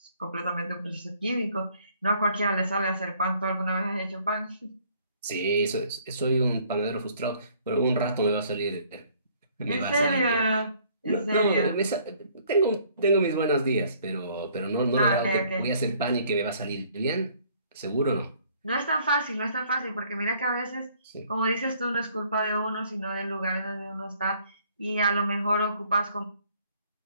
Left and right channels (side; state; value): both; inverted; correlation -0.61